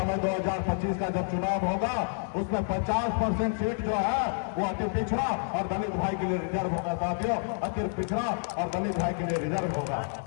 2025 का जब चुनाव होगा उसमें 50% सीट जो है वो अति पिछड़ा और दलित भाई के लिए रिजर्व होगा साथियों। अति पिछड़ा और दलित भाई के लिए रिजर्व होगा।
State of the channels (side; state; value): right; silent; 59 dB below the other